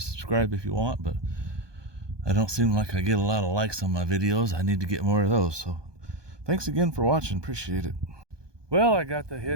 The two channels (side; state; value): left; late; 1.2 ms